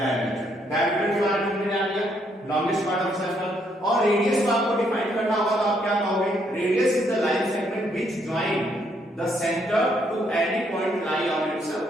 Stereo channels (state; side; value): normal; both; correlation 0.72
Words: Diameter के बारे में हमने जान लिया, लॉन्गेस्ट पार्ट ऑफ सर्कल। और रेडियस को आपको डिफाइन करना होगा, तो आप क्या कहोगे? Radius is the line segment which join the centre to any point lie on its